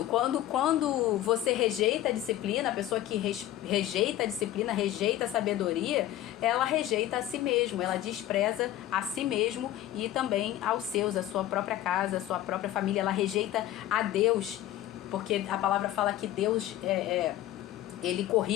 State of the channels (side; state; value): right; quieter; 13.5 dB